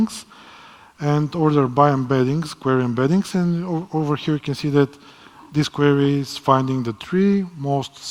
and order by embeddings, query embeddings. And over here, you can see that this query is finding the 3 most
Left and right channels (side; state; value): both; identical; correlation 1.00